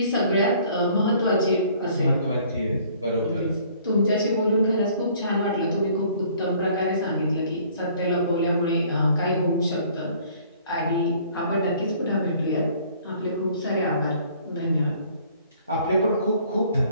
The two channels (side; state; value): both; inverted; correlation -0.56